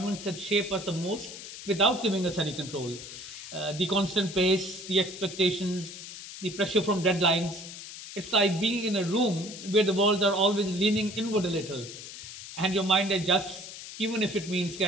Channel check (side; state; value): left; noise; hiss, 12 dB below the sound